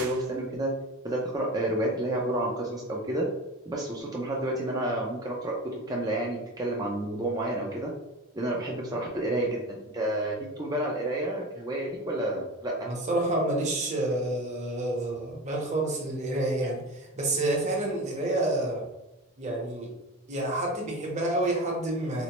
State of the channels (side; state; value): both; normal; correlation 0.30